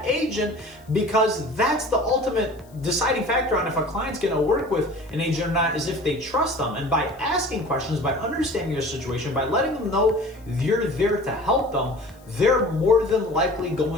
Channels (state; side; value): noise; left; hiss, 29 dB below the sound